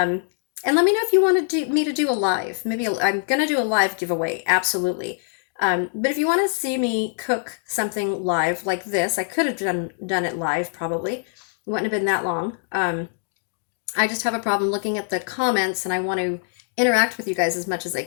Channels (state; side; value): silent; right; digital silence